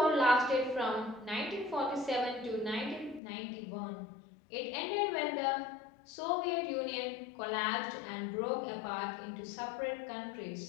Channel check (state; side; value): drops out; right; at 3.2 s